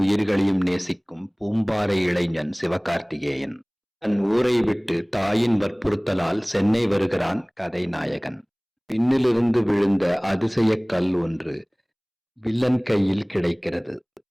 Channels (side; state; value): both; identical; correlation 1.00